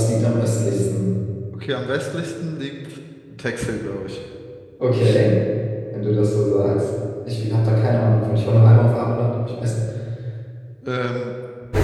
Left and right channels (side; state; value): both; identical; correlation 1.00